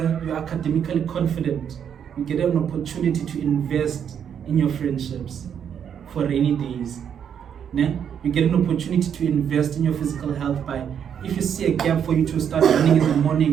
you're academically confident, you get an opportunity to invest in your friendships for rainy days. Ne? You get an opportunity to invest in your physical health by, if you see a gap for you to start running in the morning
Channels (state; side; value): quieter; left; 8.3 dB